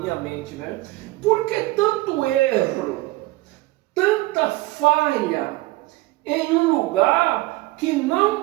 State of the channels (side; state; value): left; quieter; 19.8 dB